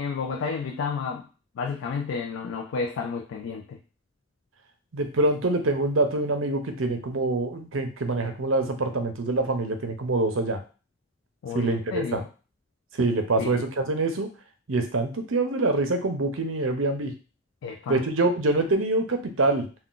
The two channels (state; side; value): normal; both; correlation -0.01